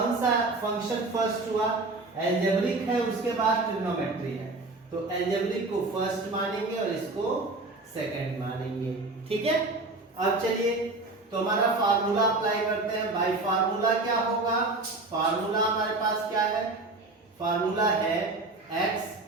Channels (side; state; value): left; quieter; 3.2 dB